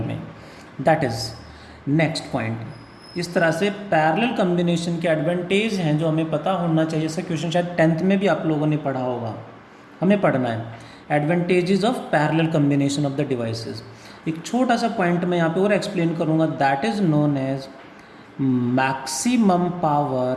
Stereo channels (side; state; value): both; identical; correlation 1.00